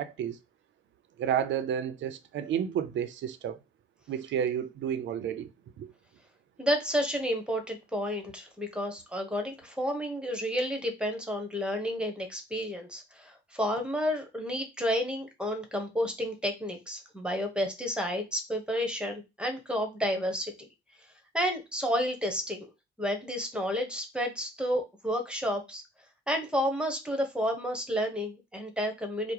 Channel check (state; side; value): normal; both; correlation 0.54